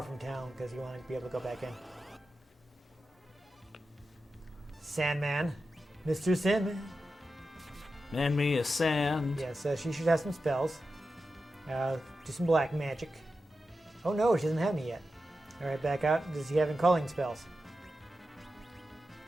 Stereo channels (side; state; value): both; normal; correlation 0.91